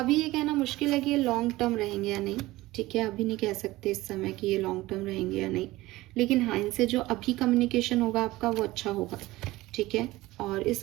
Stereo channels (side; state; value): left; quieter; 18.5 dB